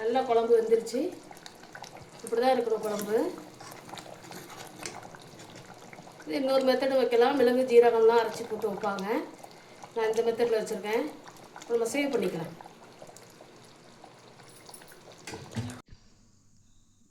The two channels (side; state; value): both; identical; correlation 1.00